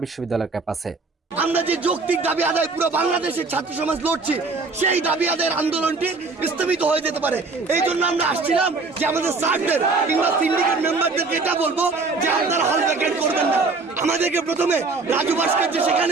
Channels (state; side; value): quieter; left; 4.0 dB